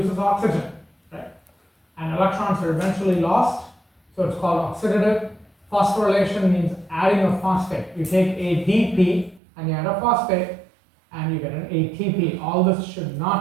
oxygen, right? And electrons are eventually lost, so it's called oxidative. Phosphorylation means adding a phosphate. You take ADP and you add a phosphate and you get an ATP. All this should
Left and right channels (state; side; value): drops out; left; at 9.4 s